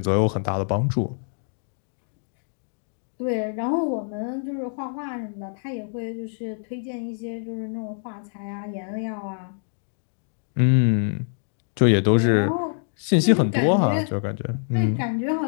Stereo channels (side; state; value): right; silent; digital silence